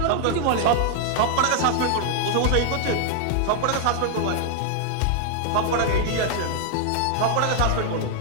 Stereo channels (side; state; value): both; different; correlation 0.00